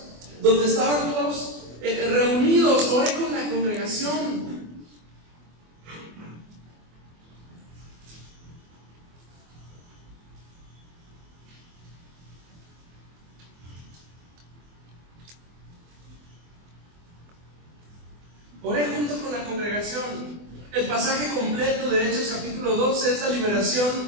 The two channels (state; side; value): late; left; 24 ms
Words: donde estaban todos reunidos. Oré con la congregación. Oré junto con la congregación. El pasaje completo de Hechos capítulo 12 es la